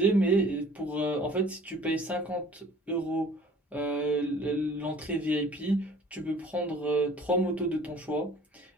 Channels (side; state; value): both; normal; correlation 0.51